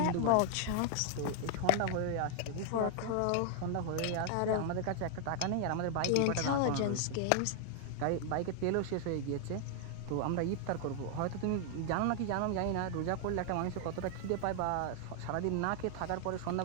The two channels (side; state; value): both; different; correlation 0.00